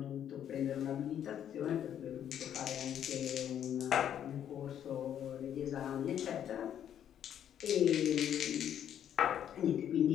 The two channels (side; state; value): right; quieter; 9.9 dB